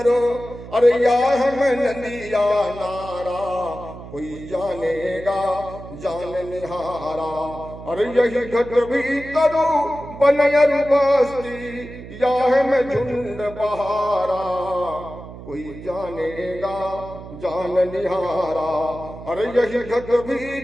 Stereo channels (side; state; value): right; noise; hum, 14 dB below the sound